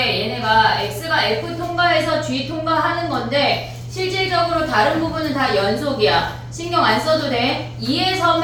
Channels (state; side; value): identical; both; correlation 1.00